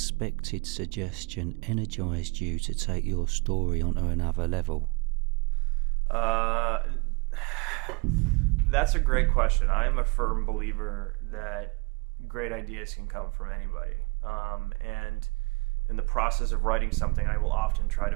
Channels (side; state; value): left; quieter; 29.9 dB